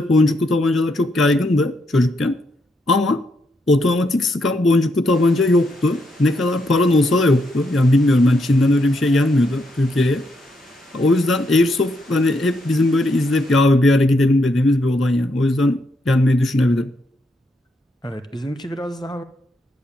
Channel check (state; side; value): normal; both; correlation 0.78